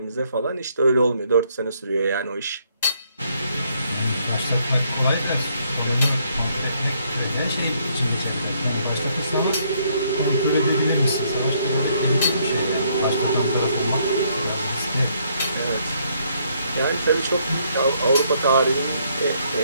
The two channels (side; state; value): both; inverted; correlation -0.70